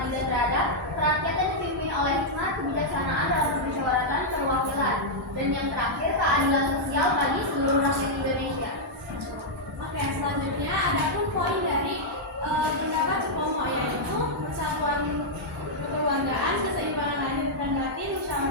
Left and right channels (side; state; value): both; normal; correlation -0.06